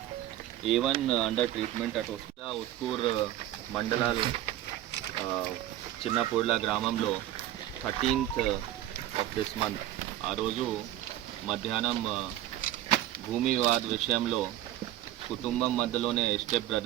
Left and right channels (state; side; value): quieter; left; 13.6 dB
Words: A1 under treatment at Uskur మండలాల్ చిన్నపూర్ల గ్రామంలో 13th ఆఫ్ దిస్ మంత్ ఆ రోజు మధ్యాహ్నం భూమి వివాద విషయంలో కుటుంబం మధ్యలోనే స్టెప్